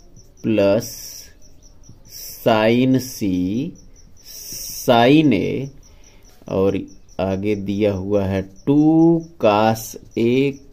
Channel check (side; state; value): both; identical; correlation 1.00